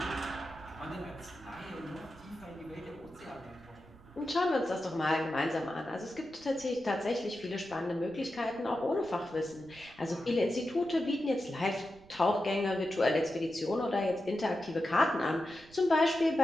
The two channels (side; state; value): right; noise; rumble, 23 dB below the sound